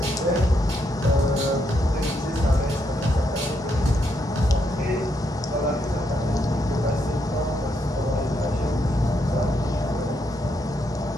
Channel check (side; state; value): both; normal; correlation 0.78